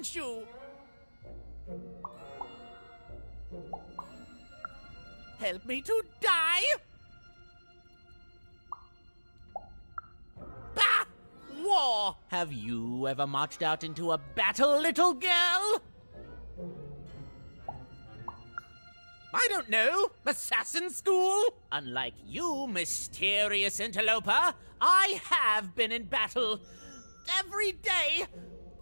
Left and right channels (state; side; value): inverted; both; correlation -1.00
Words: you? Help me to die? Bah! War! Have you ever marched out into a battle, little girl? I don't know. Assassin school? Unlike you, mysterious interloper, I have been in battle. Every day.